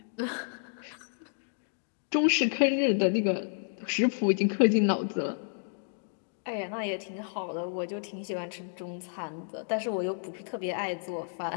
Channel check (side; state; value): right; silent; digital silence